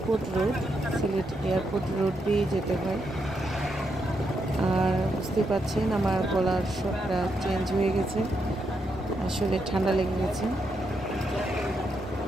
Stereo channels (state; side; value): normal; both; correlation 0.81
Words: road, Sylhet airport road দিয়ে যেতে হয়। আর বুঝতে পারছেন আমার গলার স্বরটা চেঞ্জ হয়ে গেছে, আসলে ঠান্ডা লেগে গেছে।